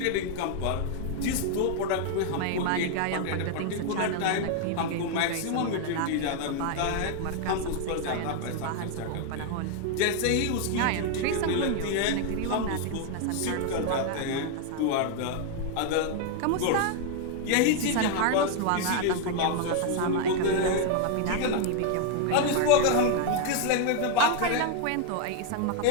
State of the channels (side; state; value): both; different; correlation 0.00